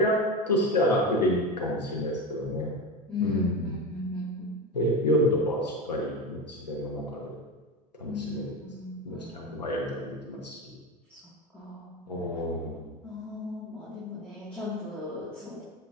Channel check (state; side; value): normal; both; correlation 0.22